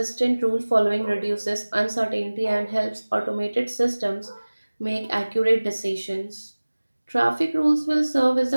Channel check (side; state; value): both; inverted; correlation -1.00